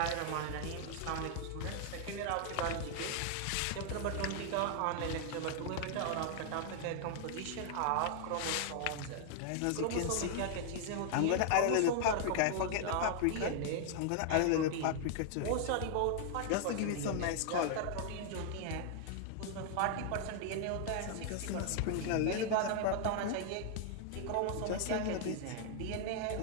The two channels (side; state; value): both; different; correlation 0.00